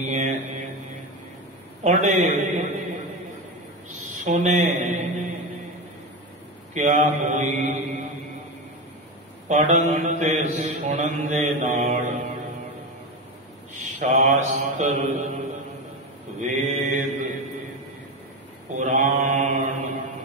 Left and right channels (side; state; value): both; normal; correlation 0.18